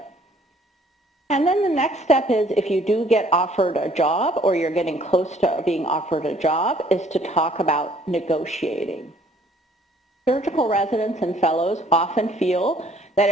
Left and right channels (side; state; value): both; normal; correlation 0.60